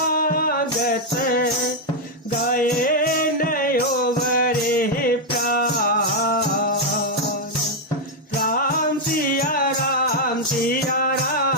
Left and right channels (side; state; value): both; normal; correlation 0.00